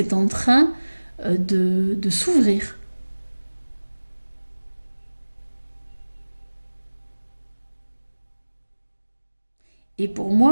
en train de s'ouvrir. Et pour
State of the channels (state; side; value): inverted; both; correlation -1.00